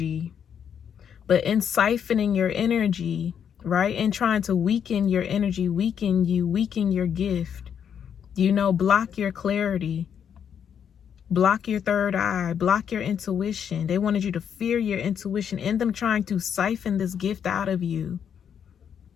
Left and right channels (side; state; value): right; quieter; 8.1 dB